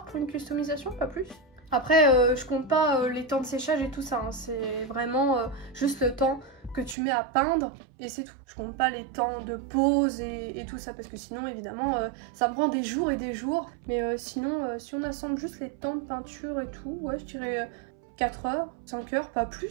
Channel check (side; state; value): left; drops out; at 7.0 s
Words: pour une customisation, pas plus. Après, je compte pas les temps de séchage et tout ça, hein. C'est vraiment juste le temps que tu mets à peindre et c'est tout. Je compte pas les temps de pause et tout ça parce que sinon évidemment ça me prend des jours et des jours. Mais sinon si on assemble juste les temps de peinture et tout, ouais je dirais 4 heures, 5 heures, pas